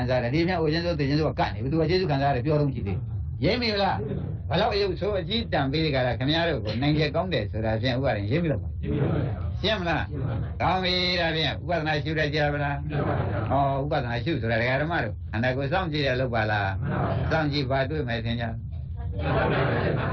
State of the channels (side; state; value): both; identical; correlation 1.00